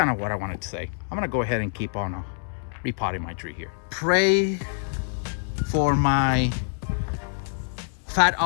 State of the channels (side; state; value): right; silent; digital silence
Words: of what I wanted to say. I'm gonna go ahead and keep on repotting my tree here. Pray for my Fat